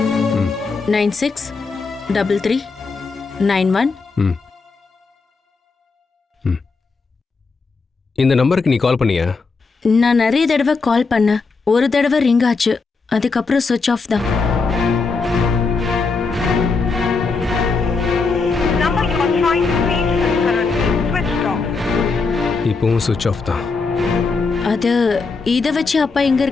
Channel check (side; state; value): right; quieter; 4.4 dB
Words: 963391. இந்த நம்பருக்கு நீ கால் பண்ணியா? நான் நிறைய தடவை கால் பண்ணேன். ஒரு தடவை ரிங் ஆச்சு, அதுக்கப்புறம் சுவிட்ச் ஆஃப் தான். இப்பவும் சுவிட்ச் ஆஃப் தான். அது இதை வச்சு அப்பா எங்க